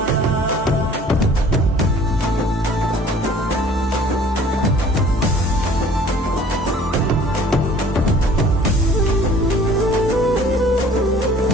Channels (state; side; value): normal; both; correlation 0.51